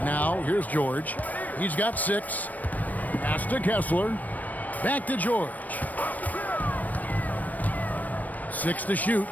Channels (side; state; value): right; late; 0.078 ms